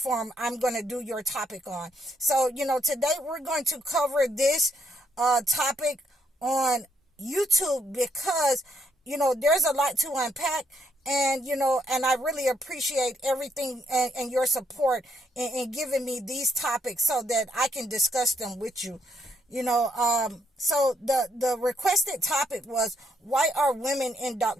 I'm going to do your topic on. So, today we're going to cover this topic on YouTube because there's a lot to unpack, and I really appreciate everything and your support in giving me these topics so that I can discuss them with you. So the requested topic was, why are women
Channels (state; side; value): normal; both; correlation 0.73